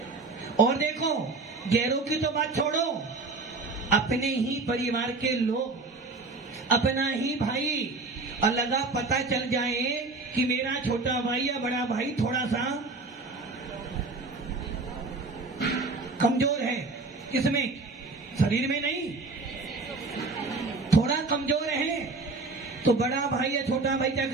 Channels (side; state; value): left; quieter; 3.7 dB